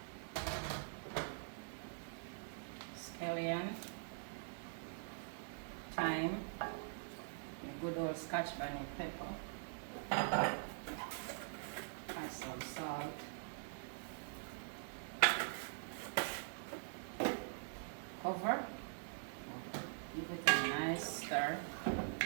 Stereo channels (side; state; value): left; silent; digital silence